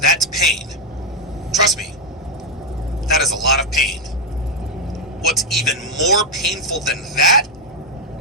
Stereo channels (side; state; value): both; normal; correlation 0.03